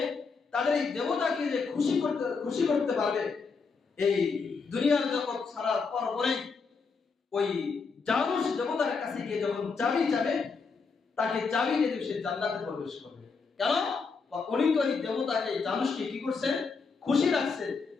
তাদের এই দেবতাকে যে খুশি করতে পারবে, এই দুনিয়ার জগৎ ছাড়ার পরে ওই জানুস দেবতার কাছে গিয়ে যখন চাবি চাবে, তাকে চাবি দিয়ে সে জান্নাতে প্রবেশ করবে। কেন? উনি তো এই দেবতাকে, জানুসকে কি করছে? খুশি রাখছে,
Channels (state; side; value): quieter; right; 4.9 dB